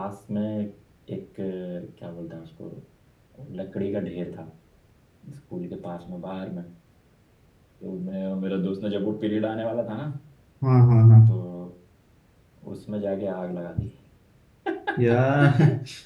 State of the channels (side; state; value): both; identical; correlation 1.00